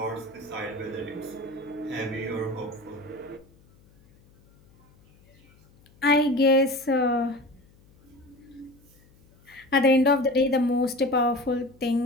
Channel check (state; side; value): noise; left; hum, 29 dB below the sound